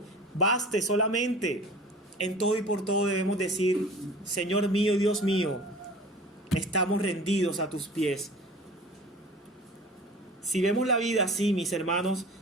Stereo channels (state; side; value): normal; both; correlation 0.41